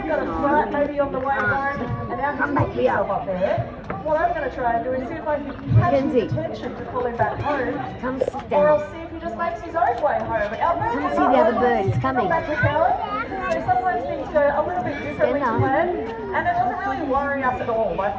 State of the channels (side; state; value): both; identical; correlation 1.00